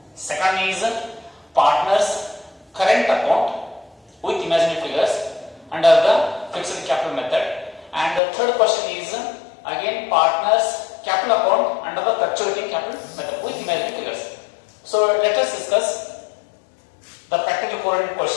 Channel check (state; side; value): drops out; right; at 8.2 s